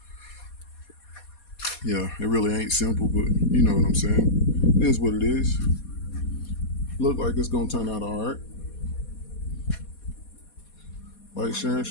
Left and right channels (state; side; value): late; right; 4.2 ms